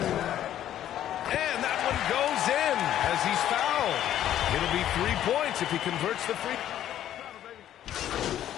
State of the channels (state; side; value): quieter; right; 11.6 dB